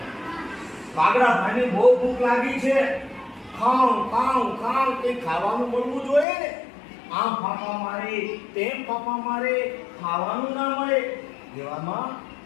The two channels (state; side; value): drops out; right; at 6.2 s